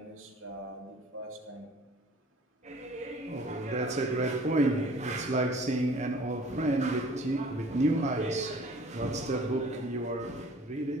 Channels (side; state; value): both; normal; correlation 0.50